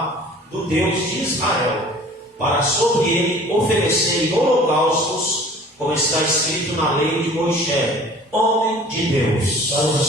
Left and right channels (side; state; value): both; normal; correlation 0.47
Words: do Deus de Israel, para sobre ele oferecerem holocaustos, como está escrito na lei de Moisés, homem de Deus.